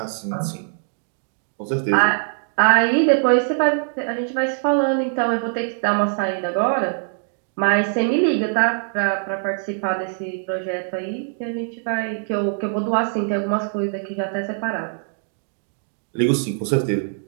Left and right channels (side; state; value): left; silent; digital silence